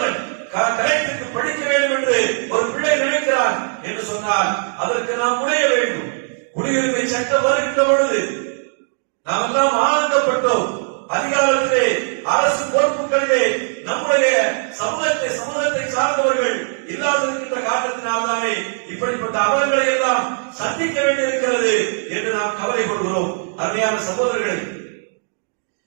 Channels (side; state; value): left; silent; digital silence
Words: கரெக்டுக்கு படிக்க வேண்டும் என்று ஒரு பிள்ளை நினைக்கிறான் என்று சொன்னால் அதற்கு நாம் முனைய வேண்டும். குடியுரிமை சட்டம் வருகின்ற பொழுது நாம் எல்லாம் ஆனந்தப்பட்டோம். அதிகாரத்திலே அரசு பொறுப்புகளிலே நம்முடைய சமூகத்தை சார்ந்தவர்கள் இல்லாதிருக்கின்ற காரணத்தினால்தானே இப்படிப்பட்ட அவலங்களை எல்லாம் சந்திக்க வேண்டியிருக்கிறது என்று நாம் கவலைப்படுகிறோம். அருமையான சகோதரர்களே,